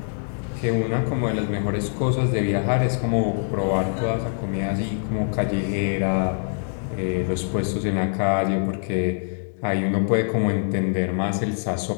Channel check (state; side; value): silent; right; digital silence